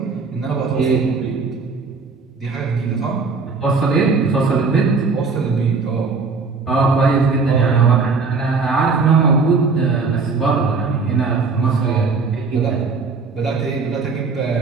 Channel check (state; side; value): quieter; left; 4.5 dB